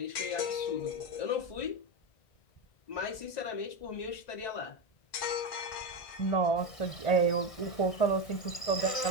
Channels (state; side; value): late; right; 1.6 ms